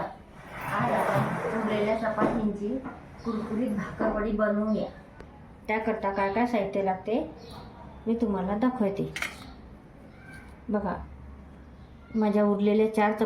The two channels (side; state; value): both; identical; correlation 1.00